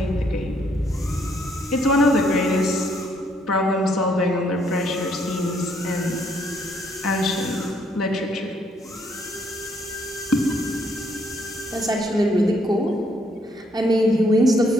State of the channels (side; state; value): both; normal; correlation 0.70